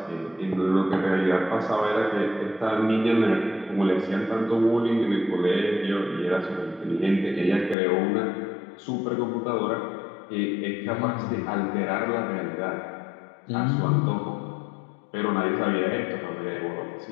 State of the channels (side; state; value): right; drops out; at 7.8 s